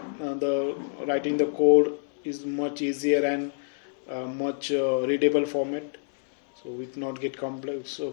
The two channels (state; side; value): silent; right; 60 dB below the other